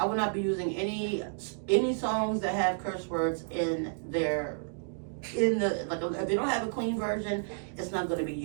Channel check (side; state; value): left; silent; digital silence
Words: will not be using any songs that have curse words in their, like, if they don't have a clean version, it's not going to be